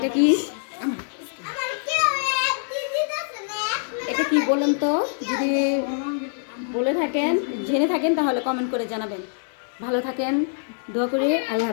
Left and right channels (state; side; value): silent; right; digital silence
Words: কি এটা কি বলেন তো, যদি বলে থাকেন, জেনে থাকেন, তাহলে কমেন্ট করে জানাবেন। ভালো থাকেন, দোয়া করি, আল্লাহ